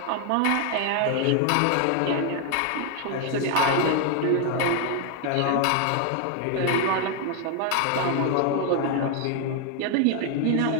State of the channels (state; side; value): different; both; correlation 0.01